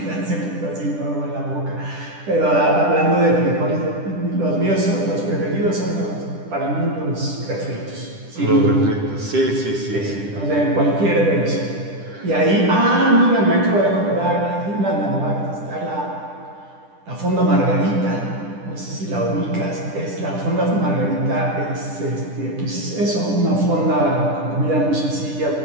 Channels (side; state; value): left; late; 10 ms